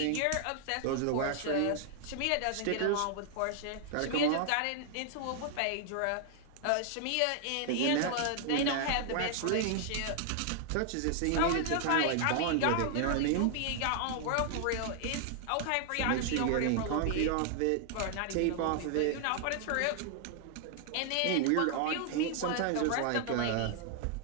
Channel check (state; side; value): different; both; correlation 0.00